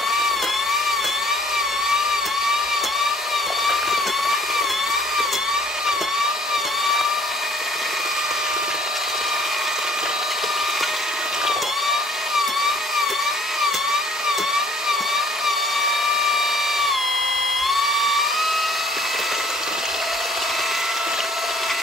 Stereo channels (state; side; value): normal; both; correlation 0.57